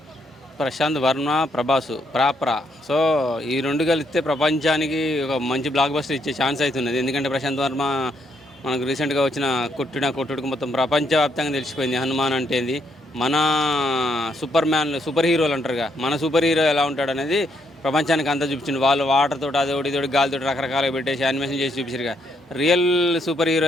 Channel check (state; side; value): normal; both; correlation 0.75